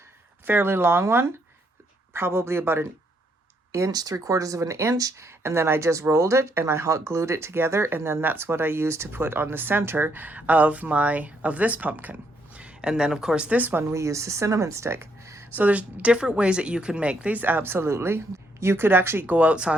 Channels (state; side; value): normal; both; correlation 0.74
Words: fairly long one, probably about an inch, 3/4 of an inch, and then I just rolled it and I hot glued it together, and then that's what I used to put on the center of this pumpkin. And then of course this one we use the cinnamon stick. So there's different ways that you can make these, absolutely. You could actually go